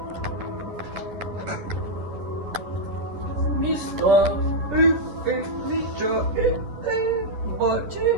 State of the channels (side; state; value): left; late; 10 ms